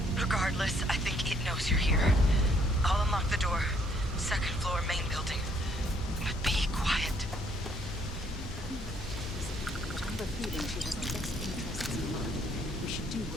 Regardless, I think it knows you're here. I'll unlock the door. Second floor, main building. But be quiet. I have a feeling she has our best interests in mind. We should do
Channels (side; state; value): both; normal; correlation 0.66